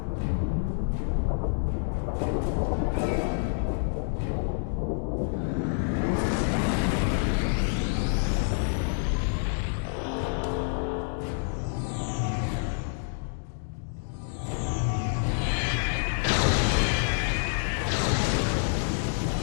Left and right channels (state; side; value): silent; right; digital silence